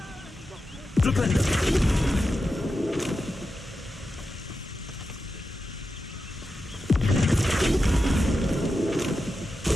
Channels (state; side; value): normal; both; correlation 0.90